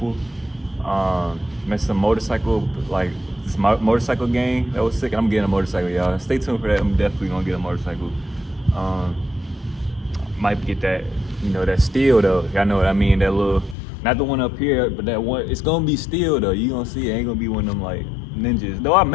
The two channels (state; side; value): drops out; right; at 13.8 s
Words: Met some motorcycle, this motorcycle gang that was sick. I'm getting a motorcycle, y'all. Stay tuned for that. I'm definitely gonna get a motorcycle. Might get that, that steel though. Y'all know what I mean? That little, not the one up here, but that one. It's gonna be steel though. You gonna see it. Ain't gonna be one of them ninjas. Though I